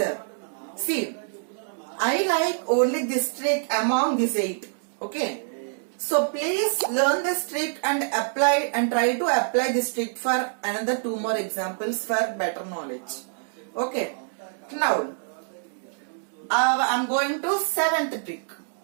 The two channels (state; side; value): silent; left; digital silence